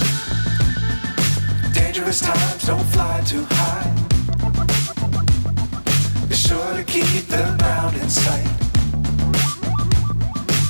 Times don't fly too high. Be sure to keep the ground in sight.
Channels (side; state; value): both; inverted; correlation -1.00